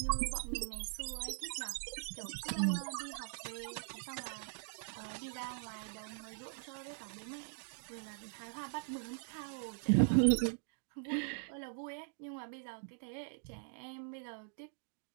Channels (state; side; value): silent; left; digital silence